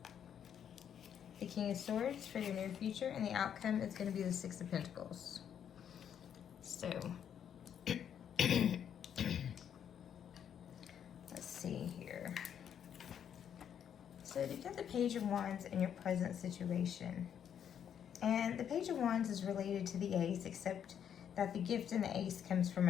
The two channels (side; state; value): right; quieter; 8.8 dB